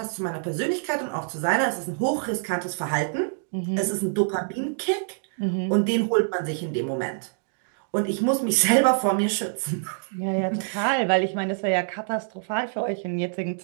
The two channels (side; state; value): left; silent; digital silence